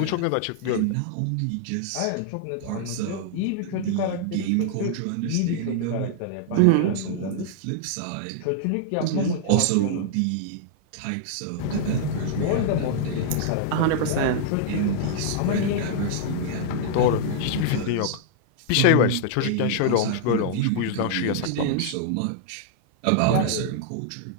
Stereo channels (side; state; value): both; different; correlation -0.01